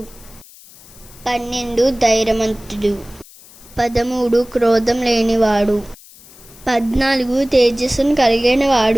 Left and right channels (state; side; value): noise; left; hiss, 22 dB below the sound